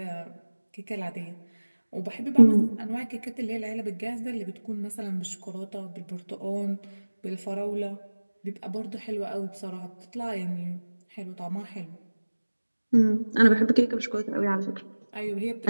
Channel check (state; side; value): inverted; both; correlation -1.00